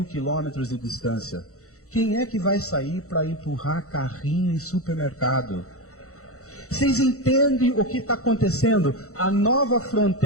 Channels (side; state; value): right; late; 0.64 ms